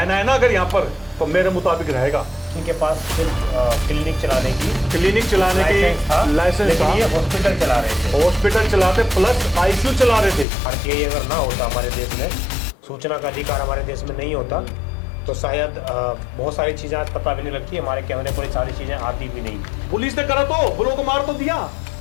ना अगर यहाँ पर तो मेरे मुताबिक रहेगा। इनके पास सिर्फ क्लिनिक चलाने की लाइसेंस था। ये हॉस्पिटल चला रहे थे, हॉस्पिटल चलाते प्लस आईसीयू चला रहे थे। आरटीआई अगर ना होता हमारे देश में, सूचना का अधिकार हमारे देश में नहीं होता तो शायद बहुत सारी चीजें आज पता भी नहीं लगती, हमारे कैमरे पर सारी चीजें आती भी नहीं। पुलिस ने करा तो ब्लॉक मार तो दिया,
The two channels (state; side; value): drops out; right; at 10.5 s